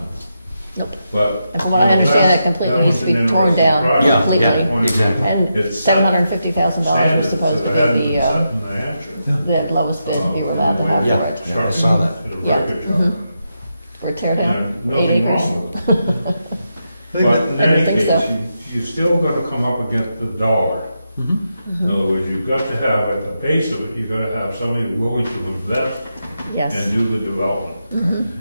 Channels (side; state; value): both; inverted; correlation -0.85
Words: Nope. But. And from what I understand, it completely needs to be torn down Yeah, completely. yeah, exactly. And It's set $750,000 was supposed to standards that hadn't be been set the in New Hampshire. the lowest bid we were allowed to have Yeah. for it. Yeah, I saw that. Did a Yeah. record job. Mhm. For a tear down, And 8 nothing acres. wrong with it. But in I don't any think case, so. you still got to come up against the dollar. In other words, you've got to have, at the base of it, you've got to have somebody willing to invest and Yes. do the development.